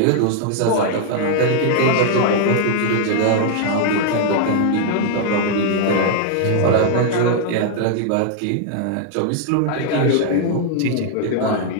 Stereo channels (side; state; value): both; different; correlation 0.00